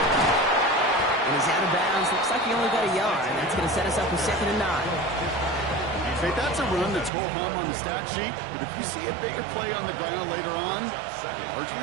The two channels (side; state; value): left; drops out; at 7.1 s